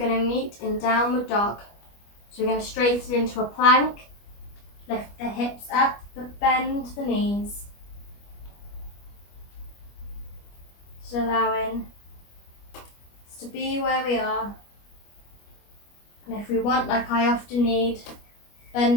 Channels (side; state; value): right; late; 25 ms